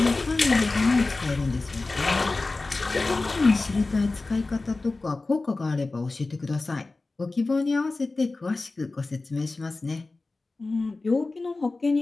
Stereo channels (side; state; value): right; quieter; 3.4 dB